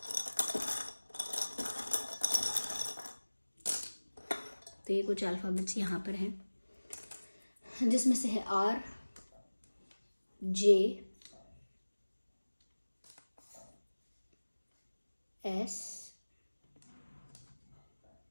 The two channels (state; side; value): inverted; both; correlation -1.00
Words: तो ये कुछ अल्फ़ाबेट्स यहाँ पर हैं, जिसमें से है R, J, S,